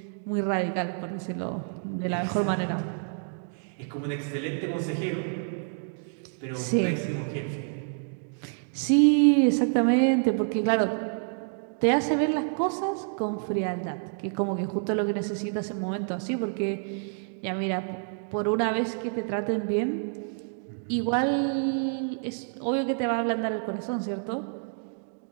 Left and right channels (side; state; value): left; silent; 59 dB below the other